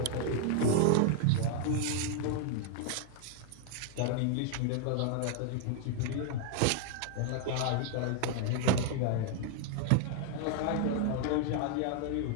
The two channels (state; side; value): different; both; correlation 0.00